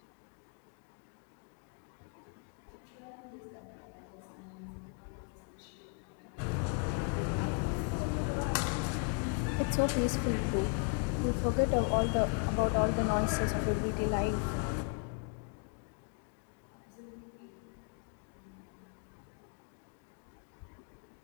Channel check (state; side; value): quieter; right; 37.7 dB